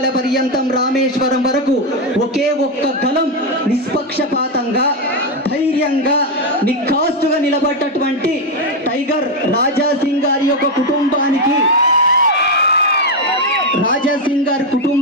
పర్యంతం రామేశ్వరం వరకు ఒకే ఒక్క గలం నిష్పక్షపాతంగా, ధైర్యంగా, నిఖాస్తుగా నిలబడ్డటువంటి టైగర్ రాజా సింగ్ గారి యొక్క కుటుంబానికి, రాజా సింగ్ గారి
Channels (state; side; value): normal; both; correlation 0.06